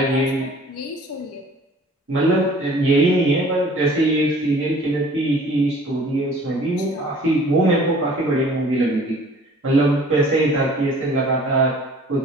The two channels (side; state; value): both; normal; correlation 0.50